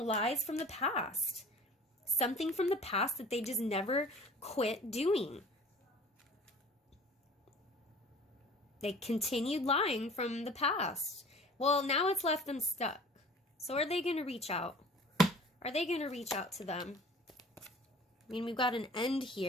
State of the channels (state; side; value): normal; both; correlation 0.46